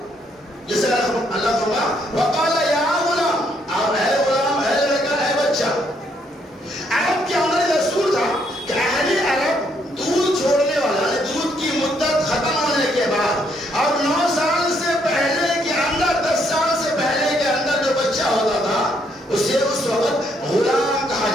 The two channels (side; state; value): both; normal; correlation 0.72